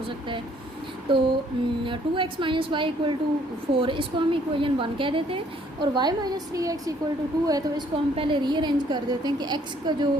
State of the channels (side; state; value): both; normal; correlation 0.63